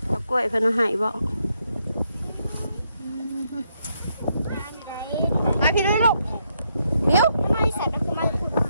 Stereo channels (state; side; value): inverted; both; correlation -0.77